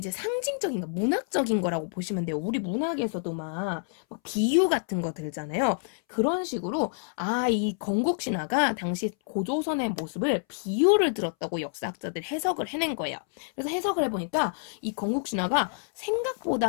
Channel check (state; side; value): silent; right; 59 dB below the other